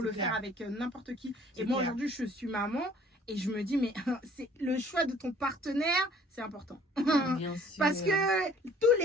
le c'est faire clair. avec n'importe qui. C'est Et moi, clair. aujourd'hui, je suis maman et je me dis, mais c'est le choix de ton partenaire, c'est important. Bien sûr. Parce que tous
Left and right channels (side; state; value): both; normal; correlation 0.55